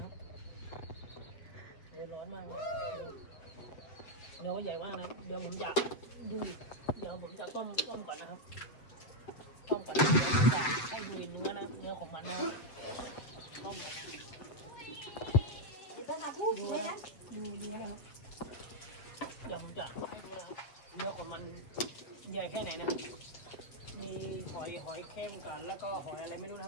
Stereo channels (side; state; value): right; late; 7.8 ms